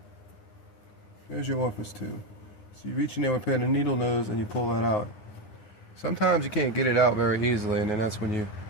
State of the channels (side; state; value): right; late; 9.5 ms